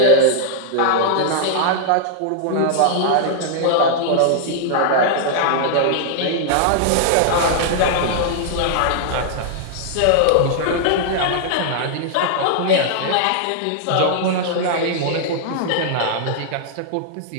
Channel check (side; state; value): both; different; correlation -0.01